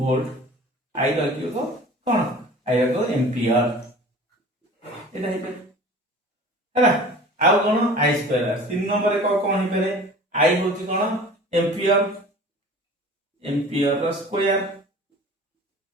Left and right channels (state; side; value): normal; both; correlation 0.42